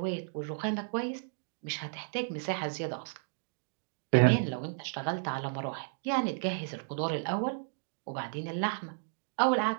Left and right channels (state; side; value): silent; left; digital silence